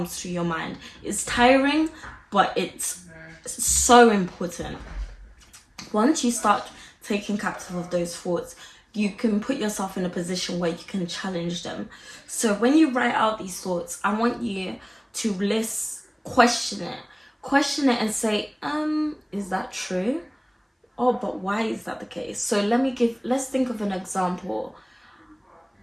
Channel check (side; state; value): both; identical; correlation 1.00